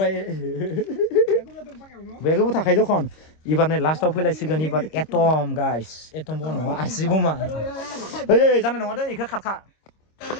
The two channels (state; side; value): late; right; 26 ms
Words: बेगबो थाखाय दखन एबार नै लास्टआव फैलायसिगोन एबार एटम गाइस एटम बो नङा आसि बमा ओइ जानाय नङा दे इखो खारखा